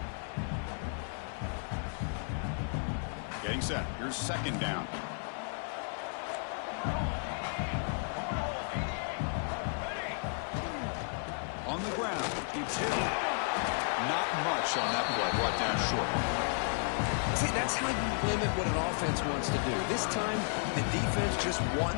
Getting set. Here's second down. On the ground, it's Hill. Not much on that play. Brought down short. See, that's how you limit what an offense wants to do. This time, the defense just won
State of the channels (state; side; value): silent; right; 55 dB below the other